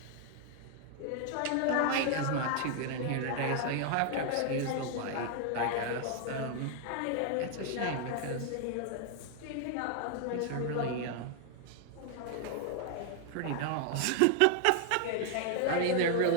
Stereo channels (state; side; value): different; both; correlation 0.00